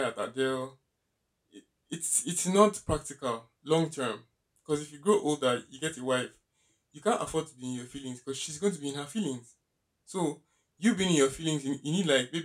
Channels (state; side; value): identical; both; correlation 1.00